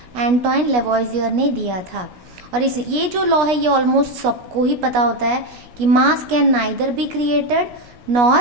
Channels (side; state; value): left; late; 16 ms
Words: एंटोइन लेवोइजियर ने दिया था। और ये जो लॉ है ये ऑलमोस्ट सबको ही पता होता है कि मास can neither be created